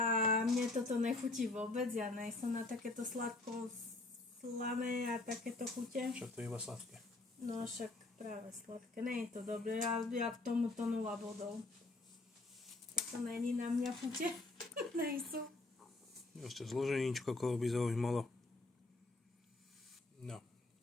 mne toto nechutí vôbec, ja nejsem na takéto sladko slané a takéto chute. Však to je iba sladké. No však práve sladké, nie je to dobré, ja k tomuto 0 bodov. Toto není na mňa chute, nejsú. Ešte zloženíčko, koho by zaujímalo. No.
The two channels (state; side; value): quieter; right; 3.1 dB